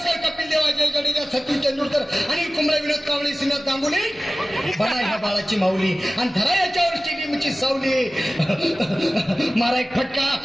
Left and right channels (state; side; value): noise; right; hum, 29 dB below the sound